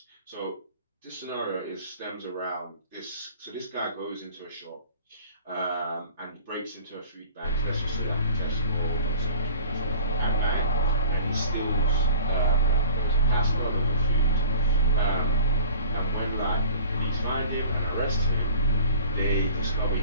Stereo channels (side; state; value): both; inverted; correlation -0.45